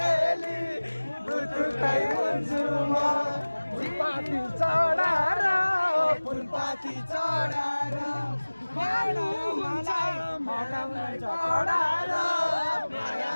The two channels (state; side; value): inverted; both; correlation -1.00